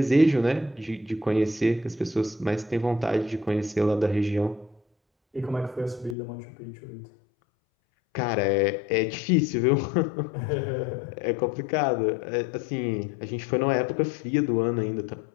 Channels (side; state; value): right; drops out; at 6.2 s